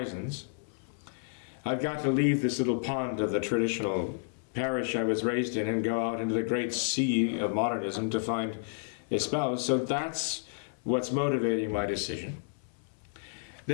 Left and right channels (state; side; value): silent; right; 57 dB below the other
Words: I've got to leave this little pond of the traditional parish I was raised in and go out into the great sea of modernism to find a spouse. So that's what's motivating my decision.